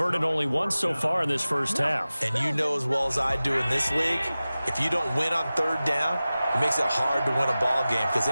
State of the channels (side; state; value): both; inverted; correlation -0.96